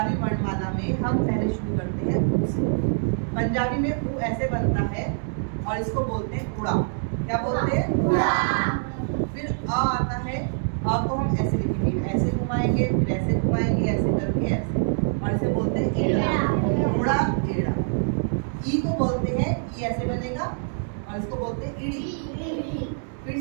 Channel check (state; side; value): silent; left; digital silence